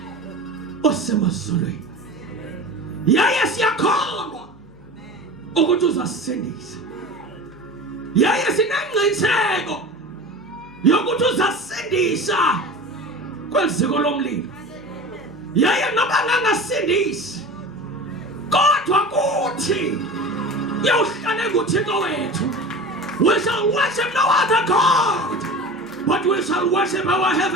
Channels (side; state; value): both; normal; correlation 0.33